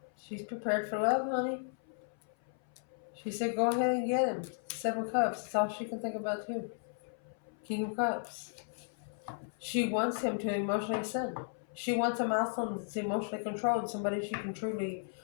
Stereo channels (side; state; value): right; silent; 54 dB below the other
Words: She's prepared for love, honey. She said go ahead and get him. 7 cups. That's all she can think about too. King of Cups. She wants him to emotionally ascend. She wants a masculine that's emotionally controlled. Somebody she can truly